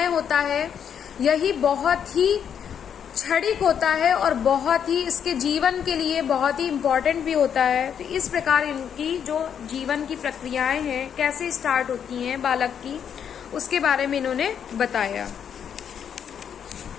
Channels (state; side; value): quieter; right; 8.2 dB